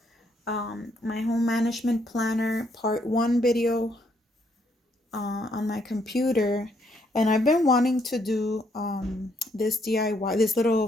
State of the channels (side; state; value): both; normal; correlation 0.72